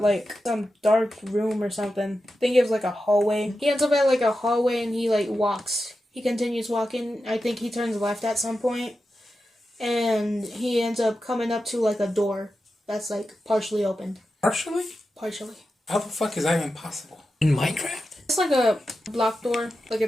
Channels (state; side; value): normal; both; correlation 0.91